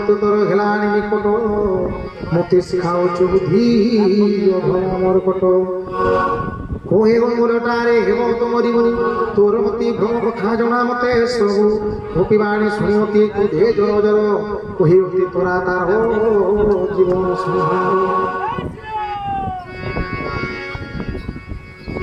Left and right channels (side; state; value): both; identical; correlation 1.00